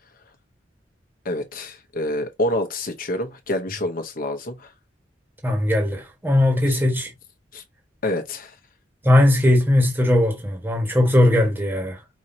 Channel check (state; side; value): normal; both; correlation 0.82